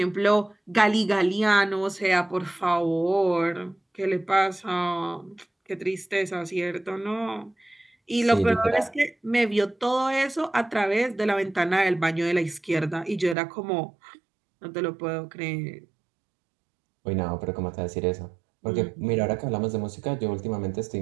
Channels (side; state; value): left; drops out; at 13.4 s